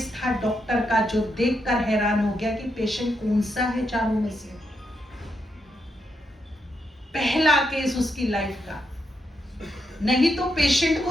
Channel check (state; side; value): normal; both; correlation 0.82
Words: था डॉक्टर का, जो देखकर हैरान हो गया कि पेशेंट कौन सा है चारों में से। पहला केस उसकी लाइफ का। नहीं तो पेशेंट को